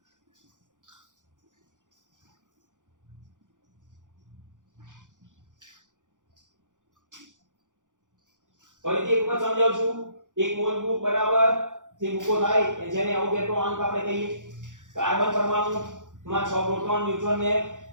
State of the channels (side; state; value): left; late; 0.87 ms